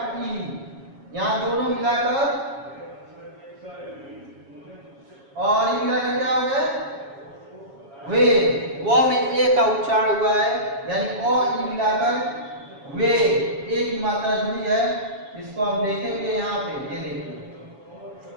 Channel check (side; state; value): left; late; 7.3 ms